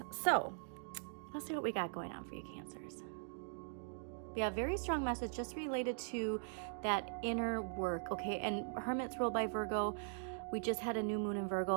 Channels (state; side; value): silent; left; digital silence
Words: So let's see what we got going on for you, Cancers. We have a very strong message just related to that inner work, okay? And Hermit's ruled by Virgo. We just had a new moon in